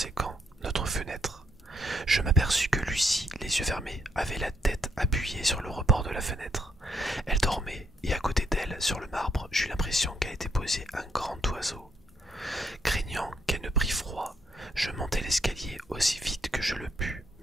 notre fenêtre. Je m'aperçus que Lucie, les yeux fermés, avait la tête appuyée sur le rebord de la fenêtre. Elle dormait et à côté d'elle, sur le marbre, j'eus l'impression qu'elle était posée un grand oiseau. Craignant qu'elle ne prît froid, je montai l'escalier aussi vite que je le pus,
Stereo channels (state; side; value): normal; both; correlation 0.74